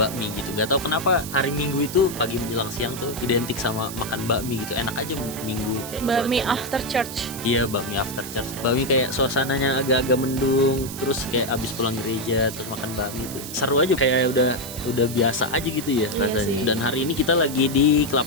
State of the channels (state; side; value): noise; right; hiss, 10 dB below the sound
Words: bakmi gitu. Gak tahu kenapa hari Minggu itu pagi menjelang siang tuh identik sama makan bakmi gitu. Enak aja Minggu kayak bakmi cuacanya. after church. Iya, bakmi after church. Bakmi kayak suasananya agak-agak mendung, terus kayak abis pulang gereja terus makan bakmi itu seru aja, kayak udah biasa aja gitu ya rasanya. Dan hari ini kita lagi di